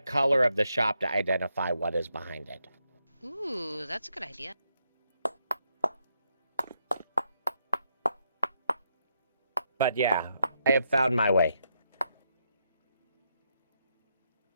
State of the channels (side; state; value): both; inverted; correlation -0.79